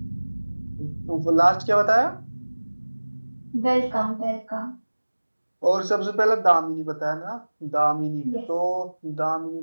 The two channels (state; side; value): inverted; both; correlation -1.00